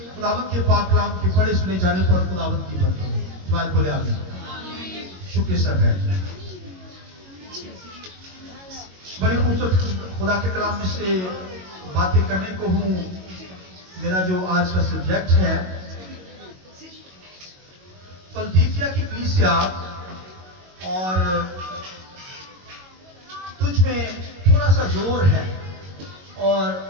خداوند کے پاک کلام کے پڑھے سنے جانے پر خداوند کی برکت ہو. جماعت بولے آمین. شکر سر ہے. بڑی خوبصورت خدا کے کلام میں سے باتیں کرنے کو ہوں. میرا جو آج کا سبجیکٹ ہے فلدیفیا کی کلیسیا اور تجھ میں تھوڑا سا زور ہے اور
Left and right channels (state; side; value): late; left; 22 ms